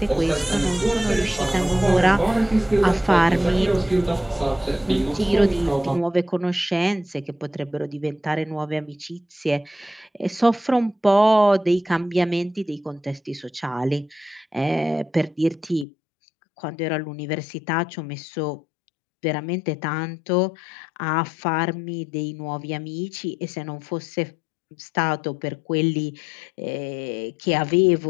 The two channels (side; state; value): right; drops out; at 15.9 s